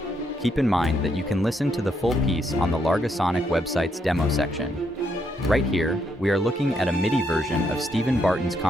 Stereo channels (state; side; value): normal; both; correlation 0.76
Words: Keep in mind that you can listen to the full piece on the Largosonic website's demo section. Right here, we are looking at a MIDI version of Stephen Barton's